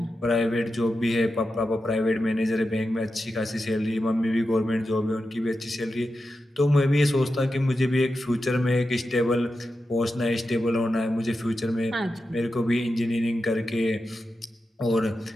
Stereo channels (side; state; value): both; normal; correlation 0.90